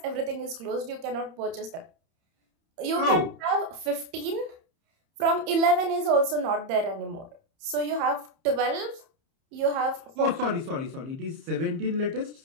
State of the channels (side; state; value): left; late; 30 ms